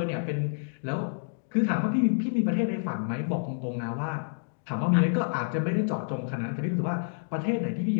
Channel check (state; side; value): silent; right; digital silence